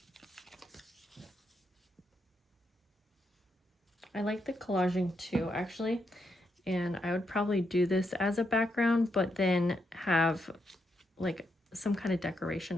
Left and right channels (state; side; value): normal; both; correlation 0.81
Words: I like the collaging too, actually. And I would probably do this as a background, but then have like some kind of